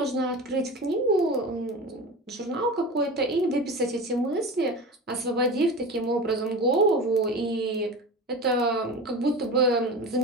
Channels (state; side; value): normal; both; correlation 0.30